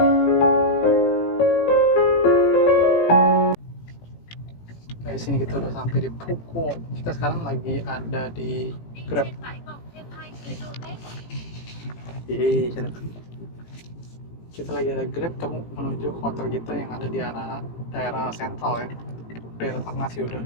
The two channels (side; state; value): right; late; 18 ms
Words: Di sini kita udah sampai di Phuoc. Kita sekarang lagi ada di Grab. Kita lagi ada Grab menuju hotel kita yang ada di arah daerah sentral ya. Daerah tengah sih udah